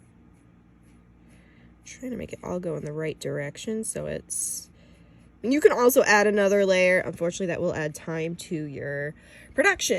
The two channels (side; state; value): both; identical; correlation 1.00